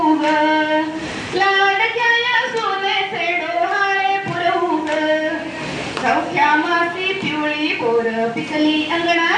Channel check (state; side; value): identical; both; correlation 1.00